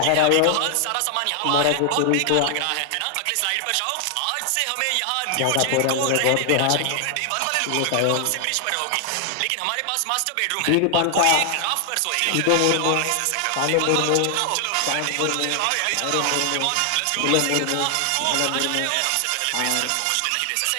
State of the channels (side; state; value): both; different; correlation 0.00